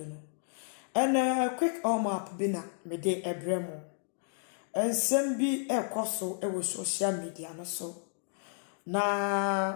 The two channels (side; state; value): right; silent; digital silence